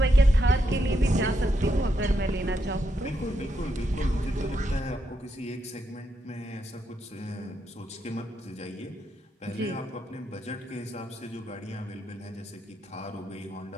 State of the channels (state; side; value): normal; both; correlation 0.81